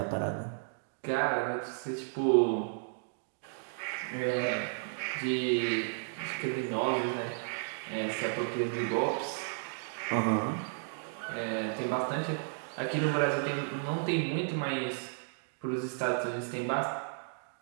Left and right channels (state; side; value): silent; left; digital silence